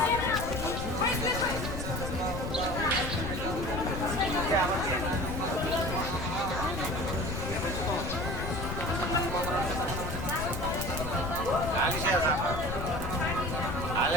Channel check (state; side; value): noise; left; rumble, 4 dB below the sound